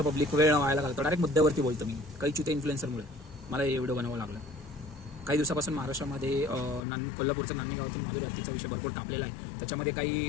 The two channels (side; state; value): right; drops out; at 6.9 s